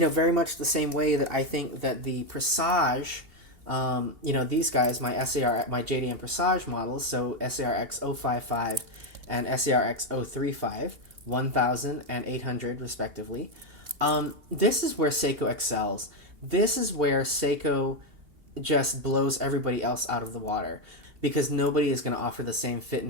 much the same way that I think that the Presage, these guys, my JDM Presage models, so SARX 055 and SARX 035, 1,000 and 800 respectively. This is where Seiko excels. This is where Seiko just blows everybody else out of the water, because nobody is going to offer the same fit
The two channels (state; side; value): late; left; 2.8 ms